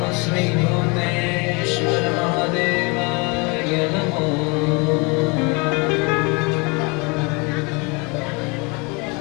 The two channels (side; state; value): right; quieter; 29.8 dB